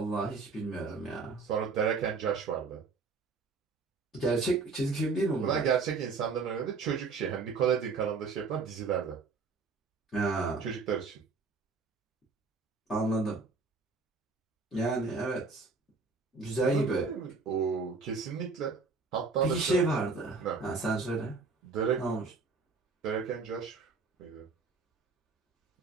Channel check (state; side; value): quieter; left; 4.4 dB